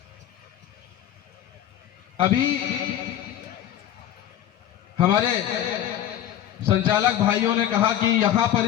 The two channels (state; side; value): quieter; right; 11.3 dB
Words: अभी हमारे संचालक भाइयों ने कहा कि यहाँ पर